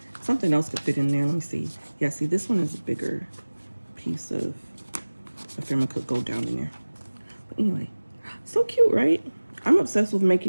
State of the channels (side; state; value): both; inverted; correlation -1.00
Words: something else could fit in there. Let me see. Yeah, see, this one is a bigger piece of ephemera, could go down in there. But anyway, so cute, right? I'm obsessed with